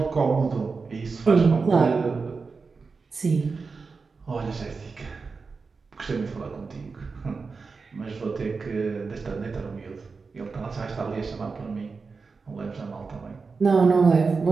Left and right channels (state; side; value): quieter; left; 4.6 dB